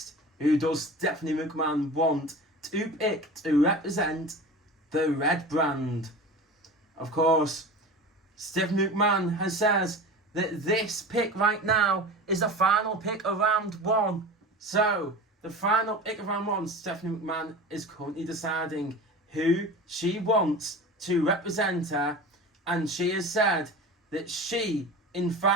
Who does Stephanie McMahon want to pick to represent the red brand? Of course, Stephanie McMahon has says that this pick right now is the final pick of round 1. So, the final pick of round 1, Stephanie McMahon is currently deciding who she wants to represent her, and she has said that she, in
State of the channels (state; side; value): normal; both; correlation 0.33